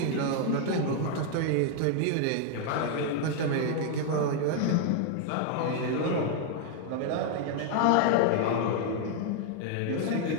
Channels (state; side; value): different; both; correlation 0.00